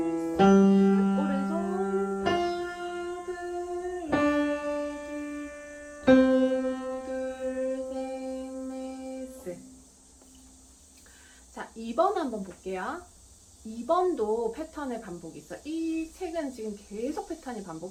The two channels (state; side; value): identical; both; correlation 1.00